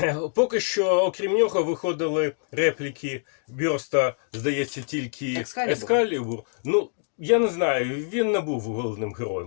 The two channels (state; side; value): silent; right; digital silence